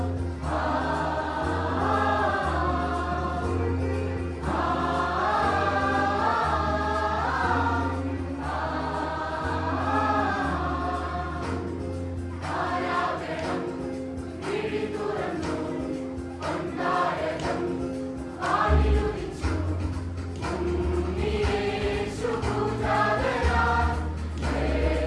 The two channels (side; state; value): both; identical; correlation 1.00